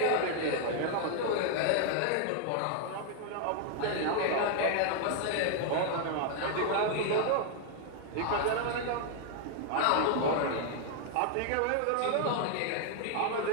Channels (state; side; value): different; both; correlation 0.00